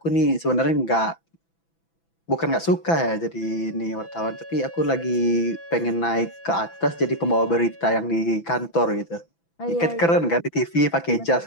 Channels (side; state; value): right; late; 6.0 ms